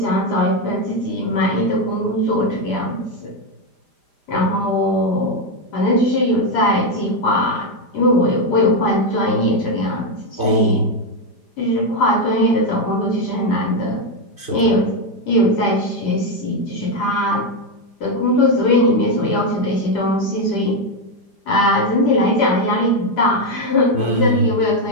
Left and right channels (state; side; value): late; right; 5.0 ms